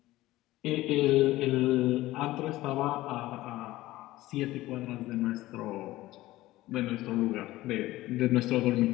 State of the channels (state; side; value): quieter; right; 17.0 dB